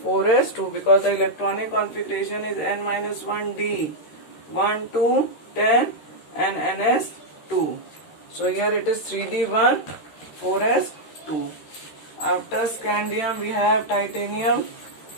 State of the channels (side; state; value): right; late; 13 ms